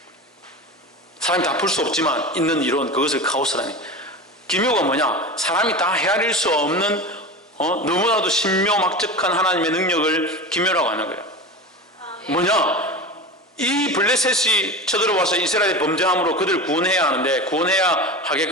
사람이 다 풀 수 없지만 있는 이론, 그것을 카오스라니. 기묘가 뭐냐? 사람이 다 헤아릴 수 없는 너무나도 신묘막측한 하나님의 능력을 기묘라고 하는 거예요. 뭐냐? 이 블레셋이 쳐들어와서 이스라엘의 범죄함으로 그들을 구원해야 하는데, 구원해야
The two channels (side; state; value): both; normal; correlation 0.28